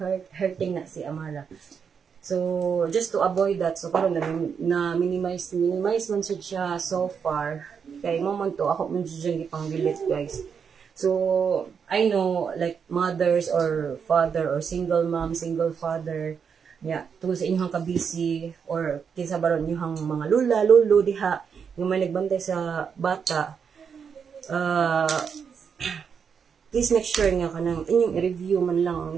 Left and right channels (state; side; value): quieter; left; 6.7 dB